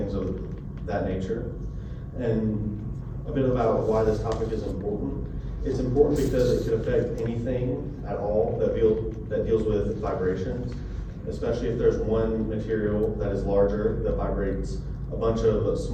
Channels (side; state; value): both; identical; correlation 1.00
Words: of that nature. And a bit about why this topic is important. It's important because it could affect anything at all that deals with vibrations, especially if there's one material that is larger that vibrates a bunch of